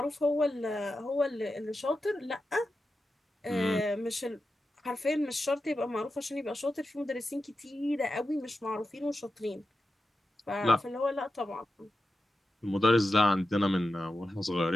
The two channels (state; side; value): normal; both; correlation 0.91